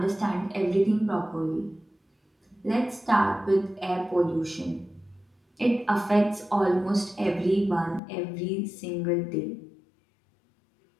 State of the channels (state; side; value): drops out; right; at 8.0 s